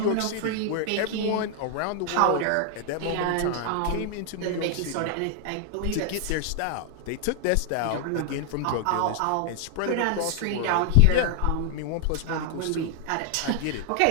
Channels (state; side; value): different; both; correlation 0.00